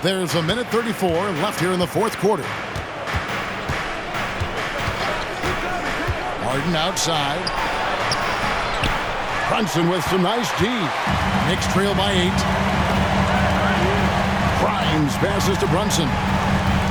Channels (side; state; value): both; identical; correlation 1.00